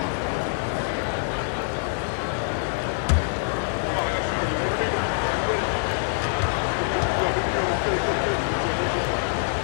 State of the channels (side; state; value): right; silent; digital silence